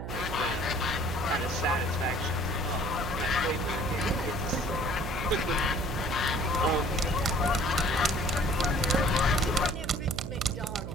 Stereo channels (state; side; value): noise; right; hum, 6 dB below the sound